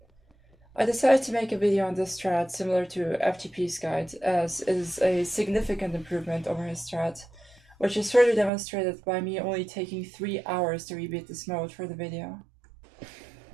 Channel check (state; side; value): drops out; left; at 8.5 s